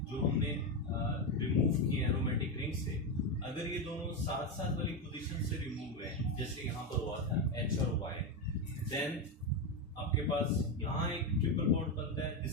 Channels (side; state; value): both; normal; correlation 0.11